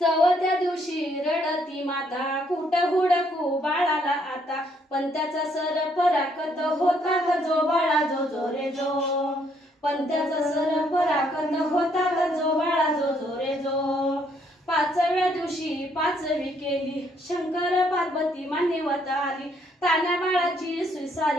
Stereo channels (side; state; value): both; normal; correlation 0.69